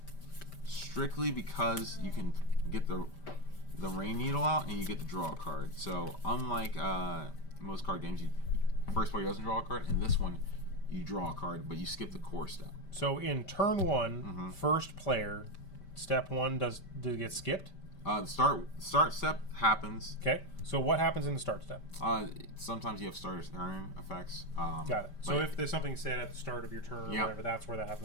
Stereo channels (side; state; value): right; late; 5.1 ms